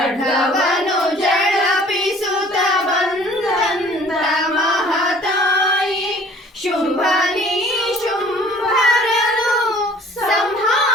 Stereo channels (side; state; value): both; normal; correlation 0.52